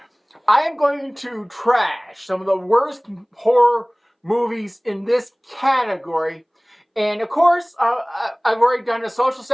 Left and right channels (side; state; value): both; identical; correlation 1.00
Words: am going to trash some of the worst horror movies in this category. And of course, I've already done a social